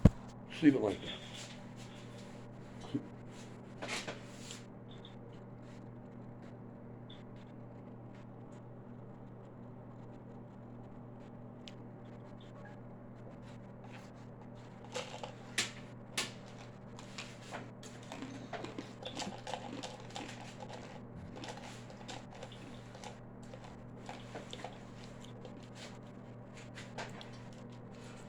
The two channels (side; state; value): both; identical; correlation 1.00